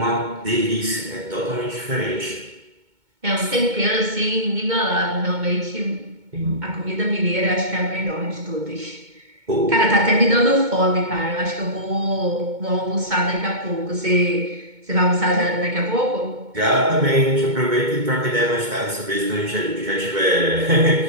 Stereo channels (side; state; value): left; late; 2.2 ms